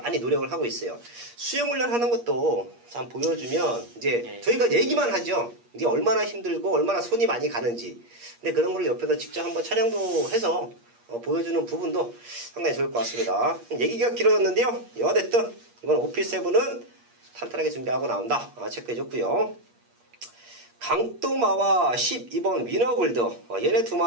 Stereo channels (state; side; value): late; left; 8.4 ms